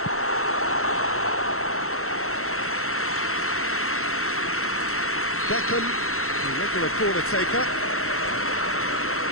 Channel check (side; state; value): right; late; 0.63 ms